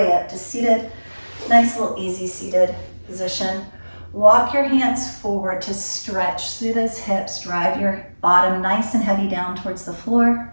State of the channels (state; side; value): inverted; both; correlation -1.00